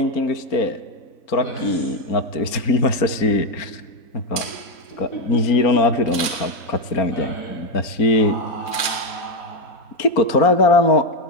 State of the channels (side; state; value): right; late; 4.3 ms